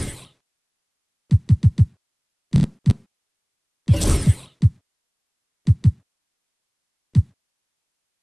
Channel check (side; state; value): both; identical; correlation 1.00